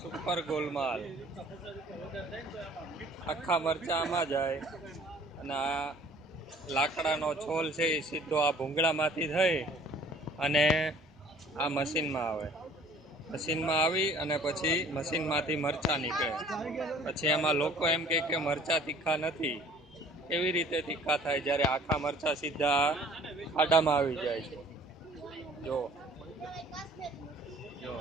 સુપર ગોલમાલ. આખા મરચા આમાં જાય અને આ લાકડાનો છોલ છે એ સીધો આ ભૂંગળામાંથી થઈ અને આ મશીનમાં આવે. મશીનમાં આવી અને પછી મશીનમાંથી મરચાં નીકળે. પછી એમાં લોકો એમ કહે કે મરચાં તીખા નથી. એવી રીતે તીખા થાય જ્યારે આખા મરચાં સીધા ખાડામાં આવી જાય છે. જો જો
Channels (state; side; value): normal; both; correlation 0.53